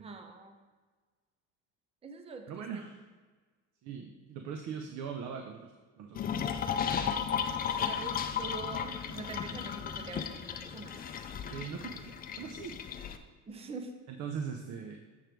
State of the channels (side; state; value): right; quieter; 4.0 dB